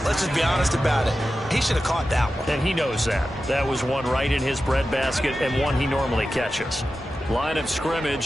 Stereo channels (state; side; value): normal; both; correlation 0.93